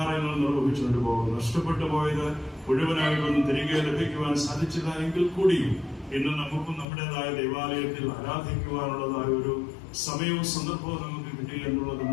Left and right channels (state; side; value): drops out; right; at 6.9 s